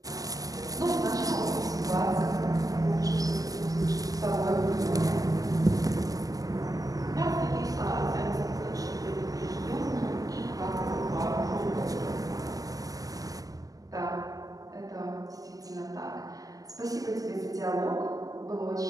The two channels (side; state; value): left; late; 0.17 ms